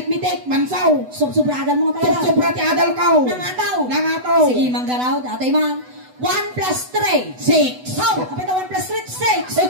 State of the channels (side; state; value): left; late; 8.0 ms